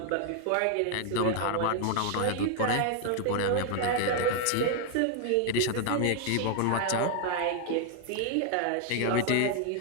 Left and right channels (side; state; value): both; different; correlation 0.00